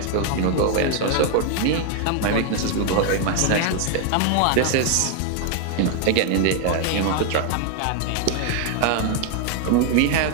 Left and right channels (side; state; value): both; different; correlation 0.00